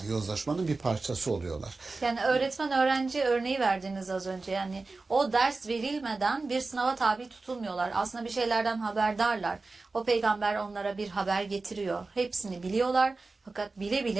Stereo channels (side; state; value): left; quieter; 3.7 dB